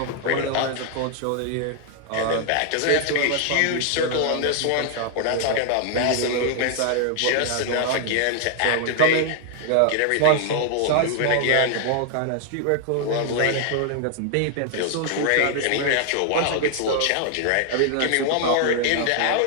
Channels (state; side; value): different; both; correlation 0.00